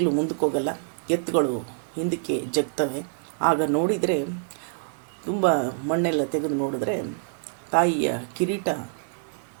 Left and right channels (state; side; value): silent; left; digital silence